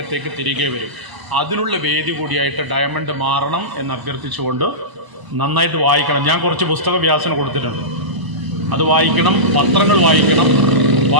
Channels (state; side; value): late; left; 1.0 ms